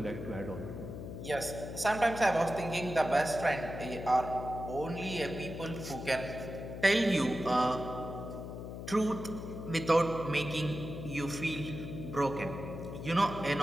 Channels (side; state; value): left; noise; hum, 8 dB below the sound